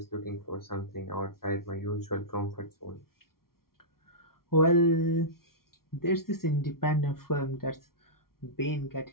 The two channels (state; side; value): late; right; 0.93 ms